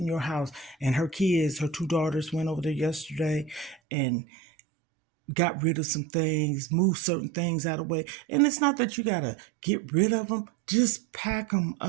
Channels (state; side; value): drops out; left; at 3.8 s